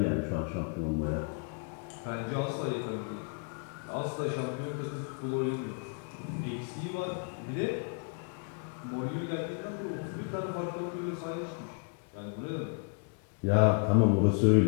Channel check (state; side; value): quieter; right; 38.0 dB